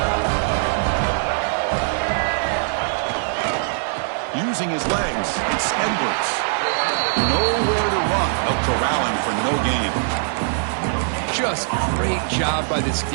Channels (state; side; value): silent; left; digital silence